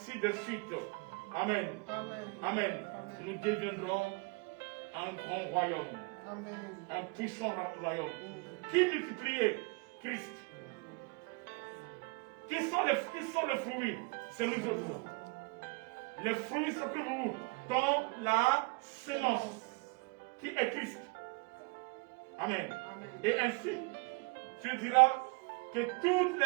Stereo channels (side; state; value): left; quieter; 29.2 dB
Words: de suite. Amen. Amen. Amen. Nous deviendrons un grand royaume. Amen. Un puissant royaume. Qui multipliait? Christ. Qui sont les fruits? C'est nous autres. Les fruits sont que vous dans la sémence qui est Christ. Amen. Amen. Et ainsi, tu diras que toutes